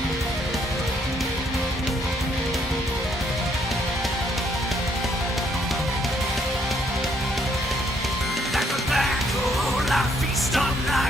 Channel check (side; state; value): both; normal; correlation 0.70